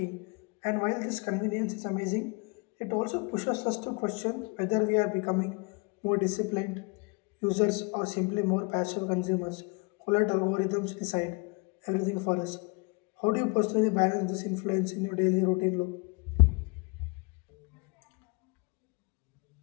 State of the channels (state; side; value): quieter; right; 30.6 dB